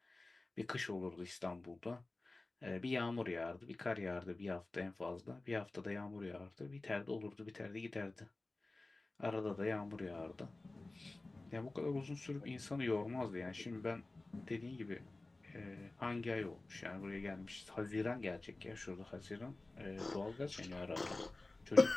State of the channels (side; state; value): right; quieter; 3.1 dB